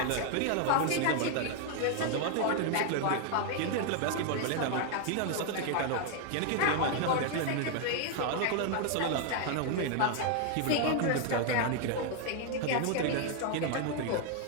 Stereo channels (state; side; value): different; both; correlation 0.00